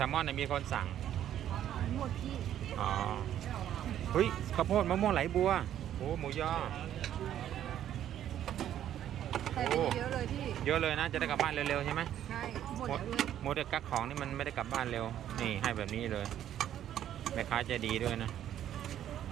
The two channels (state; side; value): quieter; left; 11.0 dB